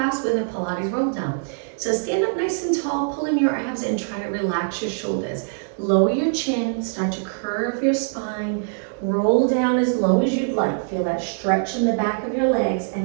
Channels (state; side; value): silent; left; 63 dB below the other